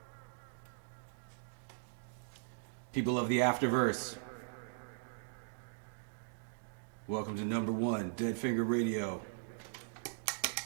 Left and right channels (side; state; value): left; silent; digital silence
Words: People of the Afterverse. Welcome to number one, Dead Finger Radio.